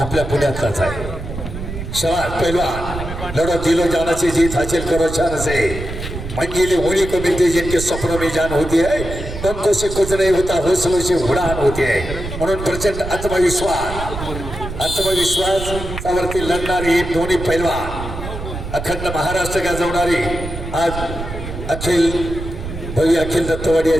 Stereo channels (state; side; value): noise; right; rumble, 8 dB below the sound